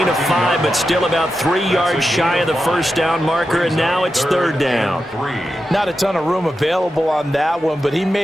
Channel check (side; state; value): both; normal; correlation 0.90